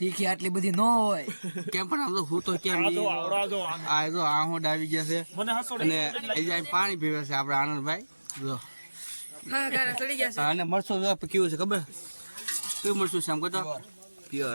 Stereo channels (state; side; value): inverted; both; correlation -1.00